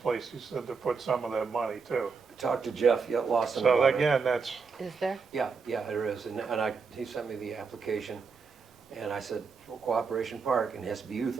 he said, to put some of that money too. Talk to Jeff Lawson So about it. again, that's, Is there? Yeah, there is, and he sent me the application, and I said, for Cooperation Park, and it has to be youth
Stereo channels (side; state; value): left; quieter; 5.1 dB